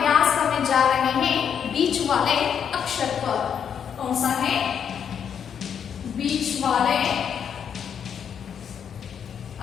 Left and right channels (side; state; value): right; quieter; 7.9 dB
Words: करने जा रहे हैं बीच वाले अक्षर पर। कौन सा है? बीच वाले